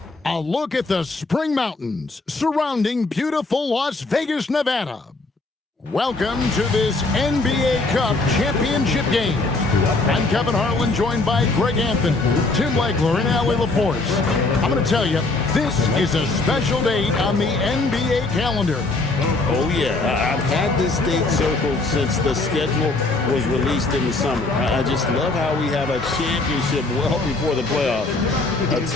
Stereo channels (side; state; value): right; quieter; 3.3 dB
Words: a look at the spring mountains surrounding beautiful Las Vegas, Nevada. Welcome to this NBA Cup championship game. I'm Kevin Harlan, joined by Greg Anthony, Tim Legler, and Allie LaForce. I'm going to tell you, this is a special date on the NBA calendar. Oh, yeah. I've had this date circled since the schedule was released in the summer. I just love how we have a championship well before the playoffs. A